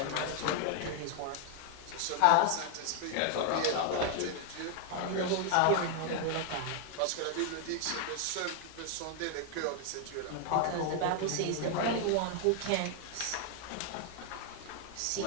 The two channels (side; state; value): both; different; correlation 0.00